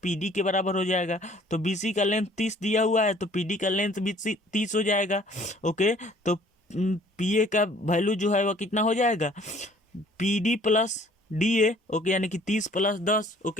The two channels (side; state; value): both; normal; correlation 0.56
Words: पी डी के बराबर हो जाएगा। तो बी सी का लेंथ 30 दिया हुआ है, तो पी डी का लेंथ भी 30 हो जाएगा। ओके, तो पी ए का वैल्यू जो है वह कितना हो जाएगा, P D plus D A. Okay, यानी कि 30 प्लस 10,